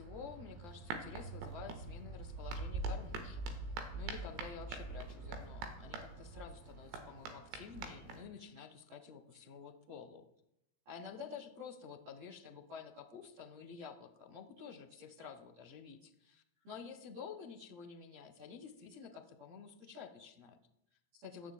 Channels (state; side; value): late; left; 17 ms